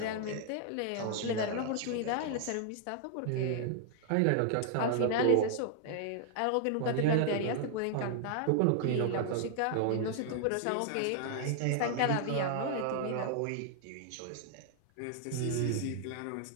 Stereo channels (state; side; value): different; both; correlation 0.00